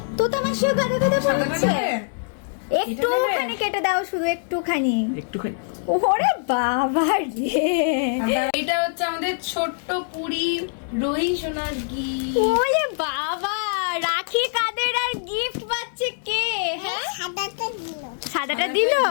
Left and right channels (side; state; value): right; silent; digital silence